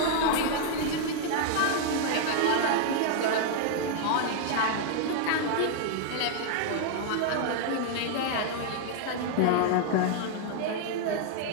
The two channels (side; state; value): both; different; correlation 0.00